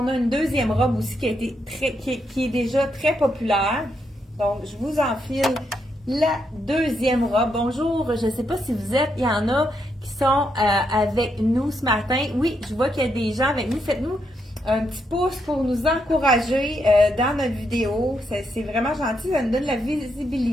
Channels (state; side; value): normal; both; correlation 0.79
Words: a une deuxième robe aussi qui est déjà très populaire. Donc, je vous enfile la deuxième robe. Bonjour, je ne sais pas si vous êtes, il y en a qui sont avec nous ce matin. Oui, je vois qu'il y a des gens avec nous. Faites-nous un petit pouce pour nous encourager dans notre vidéo. C'est vraiment gentil, ça nous donne la